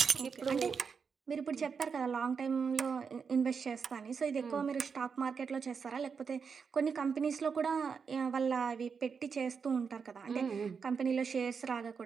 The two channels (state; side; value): quieter; left; 5.9 dB